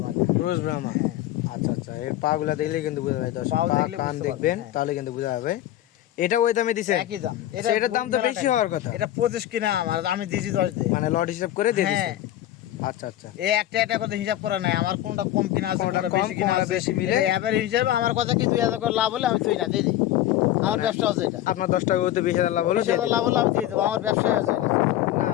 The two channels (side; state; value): right; quieter; 13.4 dB